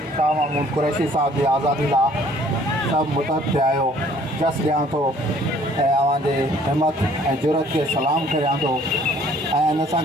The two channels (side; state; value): both; normal; correlation 0.57